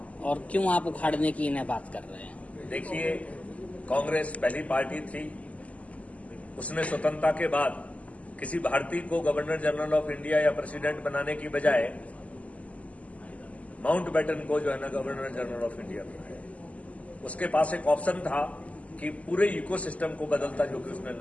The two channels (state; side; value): late; right; 0.069 ms